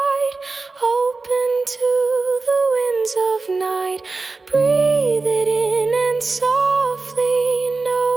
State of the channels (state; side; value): quieter; left; 3.9 dB